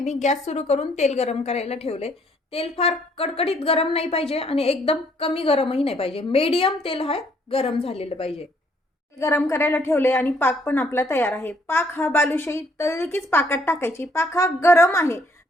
गॅस सुरू करून तेल गरम करायला ठेवले. तेल फार कडकडीत गरम नाही पाहिजे आणि एकदम कमी गरमही नाही पाहिजे. मीडियम तेल हा गरम झालेलं पाहिजे. गरम करायला ठेवले आणि पाक पण आपला तयार आहे. पाक हा बालुशाही तळली कीच पाकात टाकायची. पाक हा गरम आहे,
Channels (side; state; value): both; normal; correlation 0.66